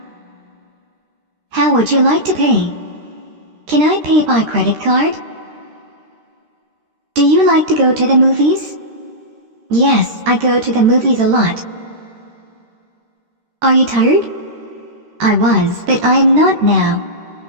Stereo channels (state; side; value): late; left; 13 ms